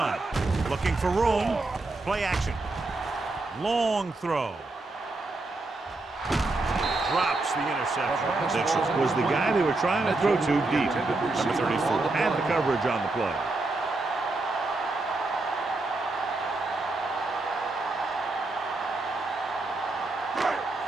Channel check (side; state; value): left; quieter; 3.1 dB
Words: Looking for room. Play action. Long throw. Drops the interception. Mitchell was the guy they were trying to throw to deep. Number 34 had the coverage on the play.